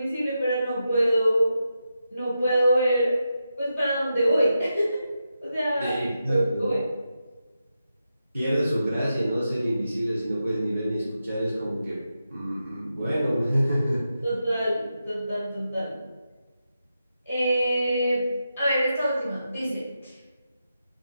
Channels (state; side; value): inverted; both; correlation -0.88